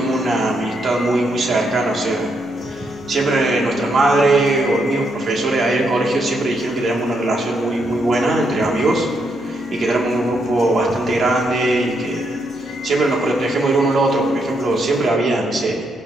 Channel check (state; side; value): normal; both; correlation 0.78